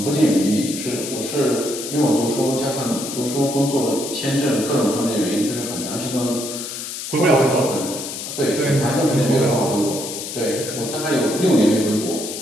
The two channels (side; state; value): left; noise; hiss, 7 dB below the sound